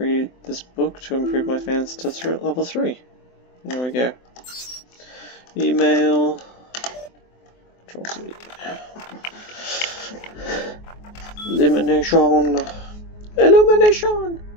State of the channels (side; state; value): right; late; 24 ms